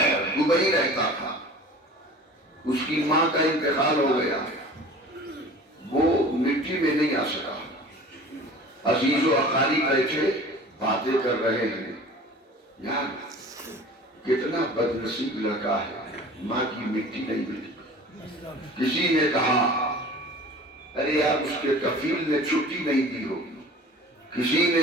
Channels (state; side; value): normal; both; correlation 0.42